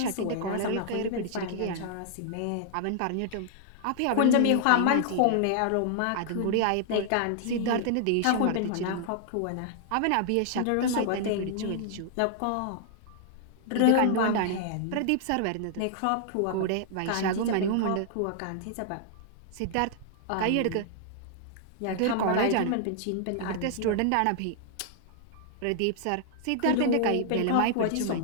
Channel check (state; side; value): different; both; correlation -0.01